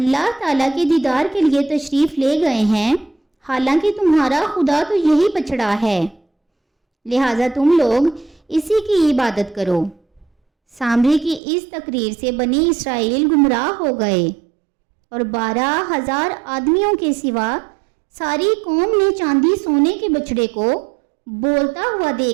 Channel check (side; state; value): left; drops out; at 11.4 s